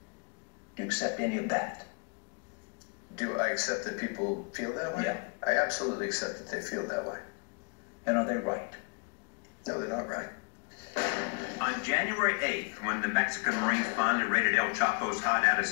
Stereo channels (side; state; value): right; quieter; 35.4 dB